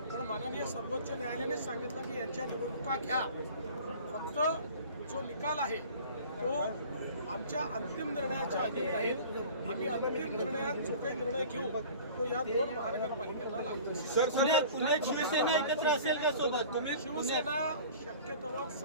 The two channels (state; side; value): inverted; both; correlation -0.44